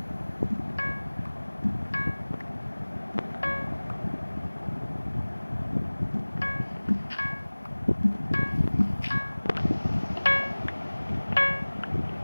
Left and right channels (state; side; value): inverted; both; correlation -1.00